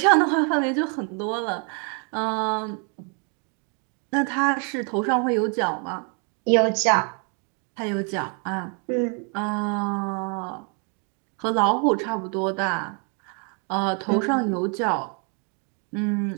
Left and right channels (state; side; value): quieter; left; 38.4 dB